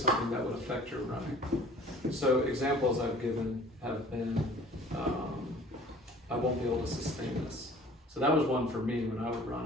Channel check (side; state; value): both; normal; correlation 0.49